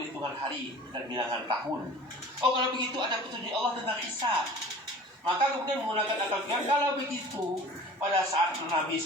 hari dan bilangan tahun. Oh, kalau begitu ada petunjuk Allah tentang hisab. Maka kemudian menggunakan akal pikiran. Kalau begitu, pada saat Nabi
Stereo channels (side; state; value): both; normal; correlation 0.43